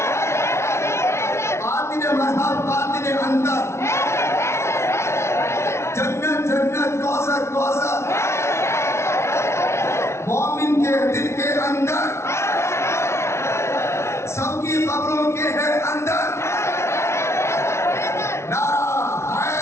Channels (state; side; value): late; right; 0.13 ms